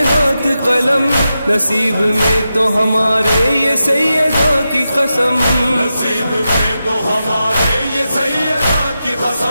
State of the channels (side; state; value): both; inverted; correlation -0.90